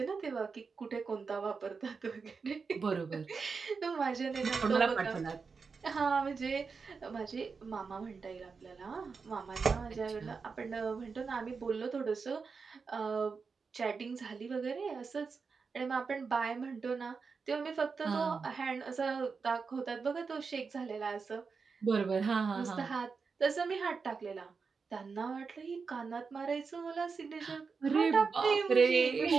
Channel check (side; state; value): left; quieter; 5.1 dB